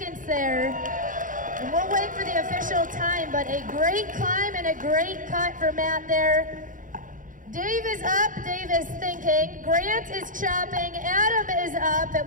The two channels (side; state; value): left; late; 0.38 ms